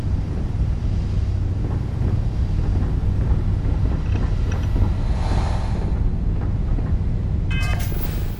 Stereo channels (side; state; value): both; identical; correlation 1.00